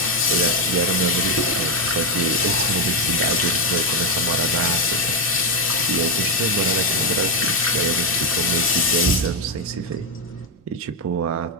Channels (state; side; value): normal; both; correlation 0.06